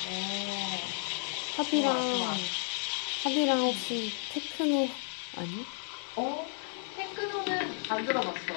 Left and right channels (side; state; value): right; silent; 56 dB below the other